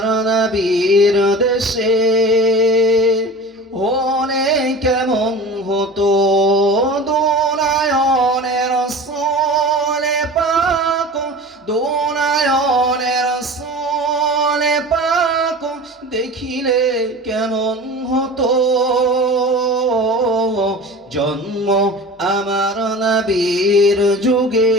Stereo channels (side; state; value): both; normal; correlation 0.36